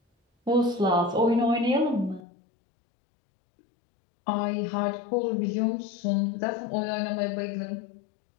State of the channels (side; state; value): right; drops out; at 2.2 s